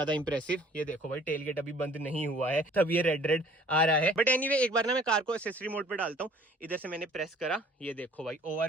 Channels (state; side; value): normal; both; correlation 0.54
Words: इंप्रेसिव। ये देखो भाई, टेल गेट अभी बंद नहीं हुआ है, तब ये रेड आ रहा है। बट एनीवे, एक बार ना मैं कार को एक्सेसरी मोड पे डालता हूँ। इधर से मैंने प्रेस करा, ये देखो भाई